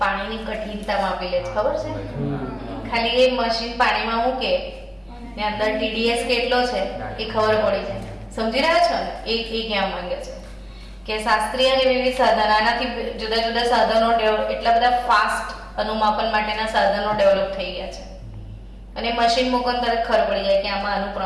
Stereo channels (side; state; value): both; identical; correlation 1.00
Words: પાણીની કઠિનતા માપી લે છે, ખબર છે? ખાલી એ મશીન પાણીમાં મૂકે ને અંદર TDS કેટલો છે એ ખબર પડી જાય. સમજી રહ્યા છો ને? એ કહેવા માંગે છે કે શાસ્ત્રીય અને વિવિધ સાધન, આનાથી જુદા જુદા સાધનો એટલા બધા ફાસ્ટ અનુમાપન માટેના સાધનો ડેવલપ થઈ ગયા છે અને મશીન મૂકો તરત ખબર પડી જાય કે આમાં આનું